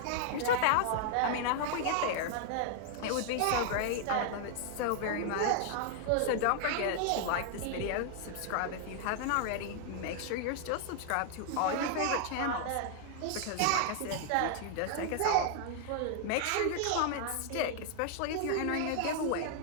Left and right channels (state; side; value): different; both; correlation 0.00